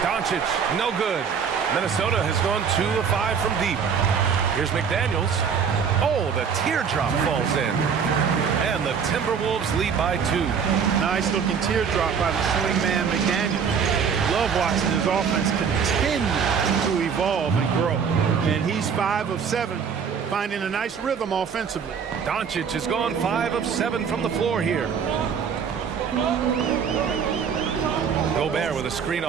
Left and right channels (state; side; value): quieter; left; 6.7 dB